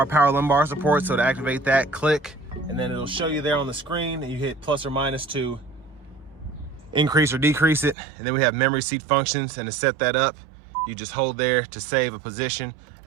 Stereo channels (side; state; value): left; drops out; at 8.0 s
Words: power lumbar support. So to activate that, click, and then it'll show you there on the screen, and you hit plus or minus to increase or decrease it. And then we have memory seat functions, and to set that up, you just hold there to save a position.